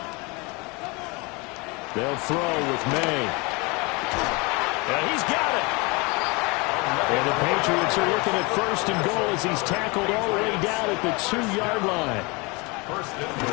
They'll throw with May. And he's got it. And the Patriots are looking at 1st and goal as he's tackled all the way down at the 2-yard line. 1st and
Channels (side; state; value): right; quieter; 27.5 dB